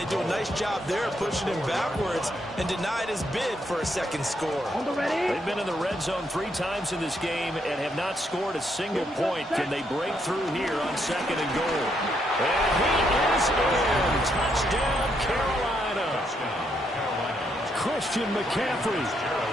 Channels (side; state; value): both; normal; correlation 0.76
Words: do a nice job there pushing him backwards and denied his bid for a second score. On the ready. They've been in the red zone 3 times in this game and have not scored a single point. Can they break through here on 2nd and goal? And he is in. Touchdown, Carolina. Christian McCaffrey